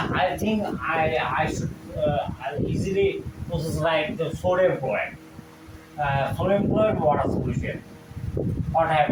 think I should easily process like the sodium chloride. Sodium chloride water solution. What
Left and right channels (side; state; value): both; identical; correlation 1.00